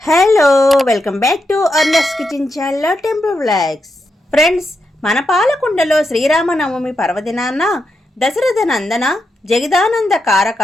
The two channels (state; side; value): normal; both; correlation 0.84